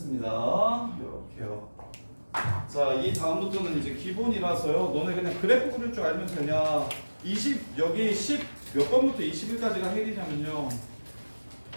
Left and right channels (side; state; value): both; inverted; correlation -1.00